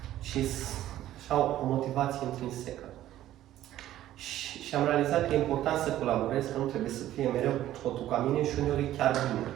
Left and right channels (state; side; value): quieter; left; 13.3 dB